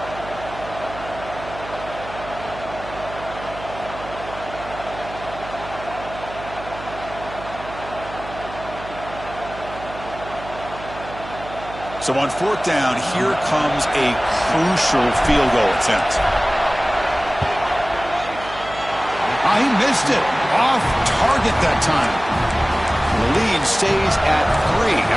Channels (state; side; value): noise; right; hum, 14 dB below the sound